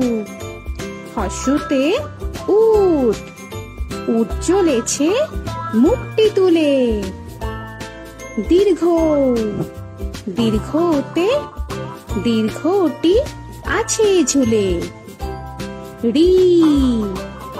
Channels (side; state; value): both; identical; correlation 1.00